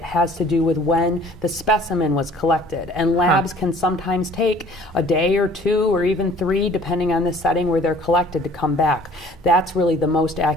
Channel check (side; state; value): both; normal; correlation 0.52